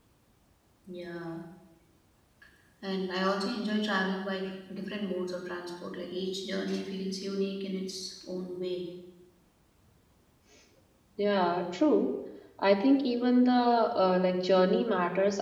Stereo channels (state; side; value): identical; both; correlation 1.00